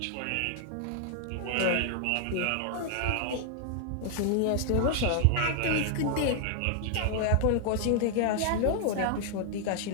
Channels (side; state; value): both; different; correlation 0.00